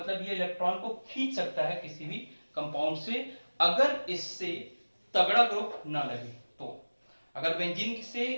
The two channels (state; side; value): inverted; both; correlation -1.00